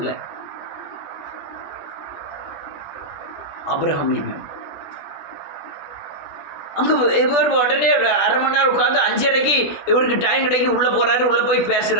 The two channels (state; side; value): late; right; 21 ms